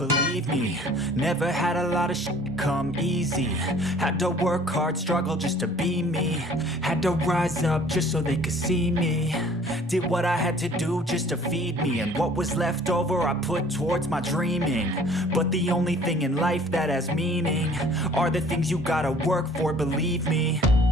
me. Never had a lot of shit come easy. Had to work hard, struggle just to be me. Had to rise up just so they could see me. Did what I had to do just to feed me, and what was left over I put towards my dreaming. But the only thing in life that has meaning are the things you gotta work for, believe me.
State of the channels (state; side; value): normal; both; correlation 0.52